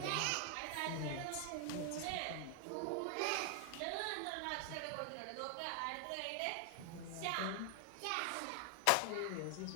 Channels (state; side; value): different; both; correlation 0.00